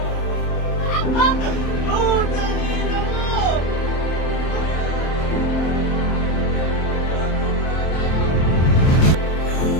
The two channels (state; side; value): late; right; 27 ms